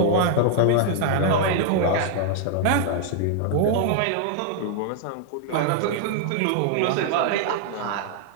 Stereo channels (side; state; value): both; different; correlation 0.00